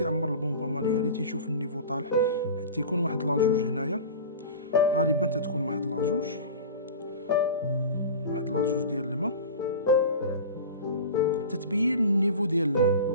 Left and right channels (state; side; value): inverted; both; correlation -0.34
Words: البومبا مانيوال، تيشوف النيفو طالع، حتى يكون واحد لاجوج هنايا، غالبا تتكون واحد لاجوج ديال الماء تتبين النيفو ديال الماء.